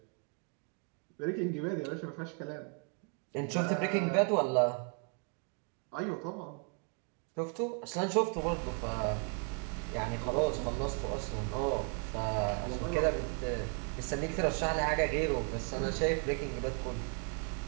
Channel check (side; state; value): left; quieter; 37.7 dB